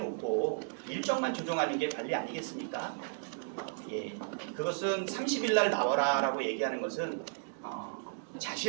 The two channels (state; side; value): silent; left; digital silence